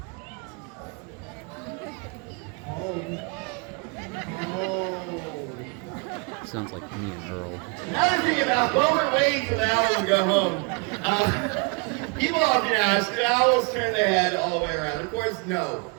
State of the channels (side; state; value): left; quieter; 31.1 dB